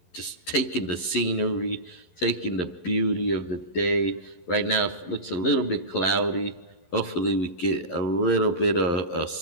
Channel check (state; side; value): late; right; 11 ms